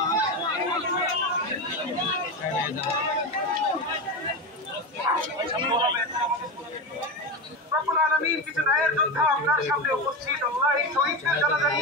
রব্বুল আলামিন কিছু ন্যায়ের যোদ্ধা আপনার সামনে উপস্থিত। আল্লাহ এই শহীদদের জানাজা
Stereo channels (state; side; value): normal; both; correlation 0.19